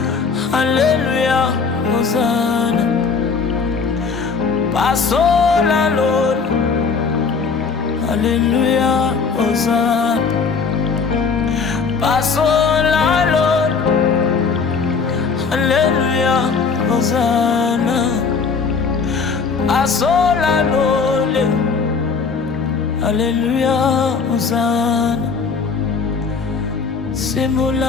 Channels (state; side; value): quieter; right; 5.2 dB